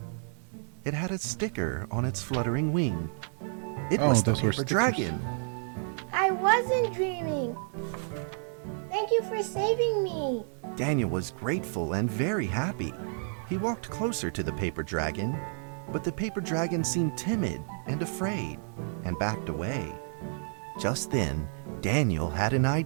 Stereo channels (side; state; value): left; silent; 58 dB below the other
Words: It had a sticker on its fluttering wing. It Oh, was the those were paper stickers. dragon. I wasn't dreaming. Thank you for saving me. Daniel was grateful and very happy. He walked closer to the paper dragon, but the paper dragon seemed timid and afraid and backed away. Just then, Daniel had an